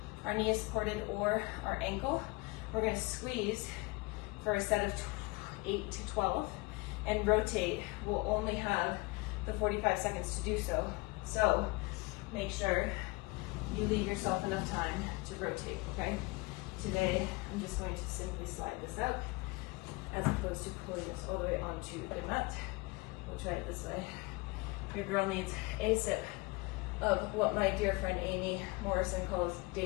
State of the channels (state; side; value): quieter; right; 24.4 dB